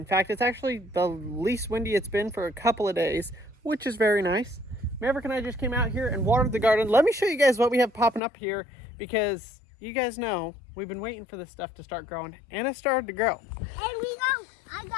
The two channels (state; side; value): drops out; right; at 8.2 s